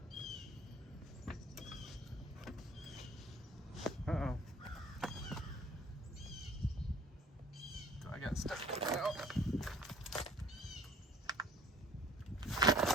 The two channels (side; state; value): both; normal; correlation 0.51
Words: Uh-oh. I got stuck out.